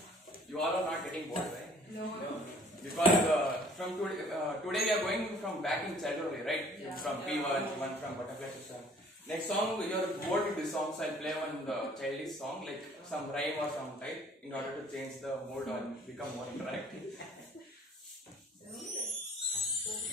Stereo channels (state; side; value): normal; both; correlation 0.55